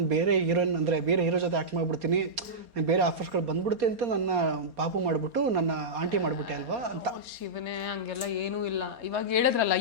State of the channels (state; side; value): late; left; 4.2 ms